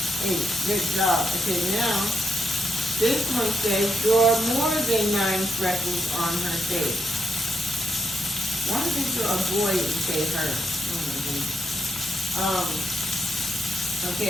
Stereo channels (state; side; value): normal; both; correlation 0.82